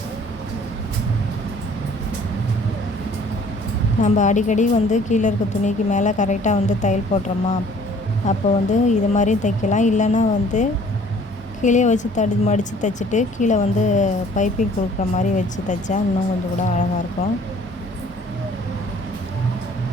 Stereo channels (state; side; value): normal; both; correlation 0.55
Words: நம்ம அடிக்கடி கீழே இருக்க துணிக்கு மேலே கரெக்டாக தையல் போடுறோமா, அப்போ இது மாதிரி தைக்கலாம். இல்லைன்னா கீழே வச்சு மடித்து தைச்சிட்டு கீழே பைப்பிங் கொடுக்குற மாதிரி வச்சு தைச்சா இன்னும் கொஞ்சம் கூட அழகாக இருக்கும்.